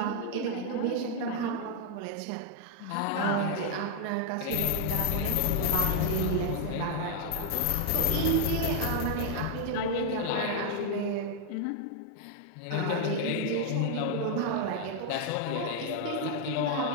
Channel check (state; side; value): different; both; correlation 0.00